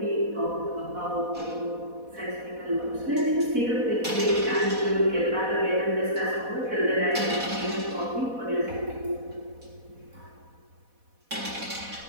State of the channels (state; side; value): late; left; 4.1 ms